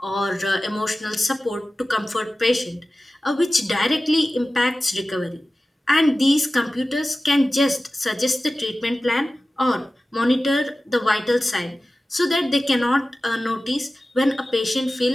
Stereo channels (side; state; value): both; normal; correlation 0.96